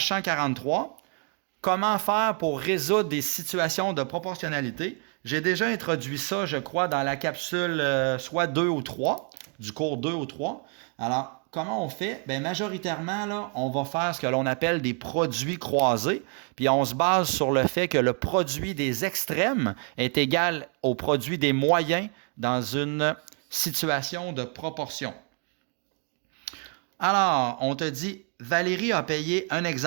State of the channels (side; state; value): left; quieter; 39.4 dB